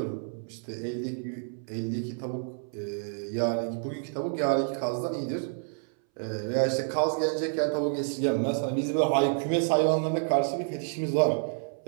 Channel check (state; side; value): silent; left; 59 dB below the other